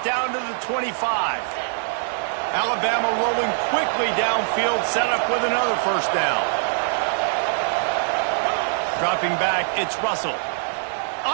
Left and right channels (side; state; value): left; silent; 57 dB below the other